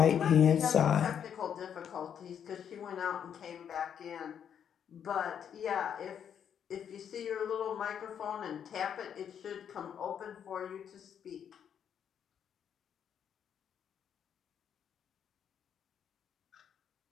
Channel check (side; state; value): right; quieter; 8.4 dB